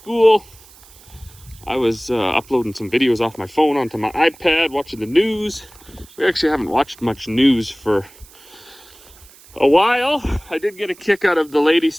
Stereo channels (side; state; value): right; noise; hiss, 24 dB below the sound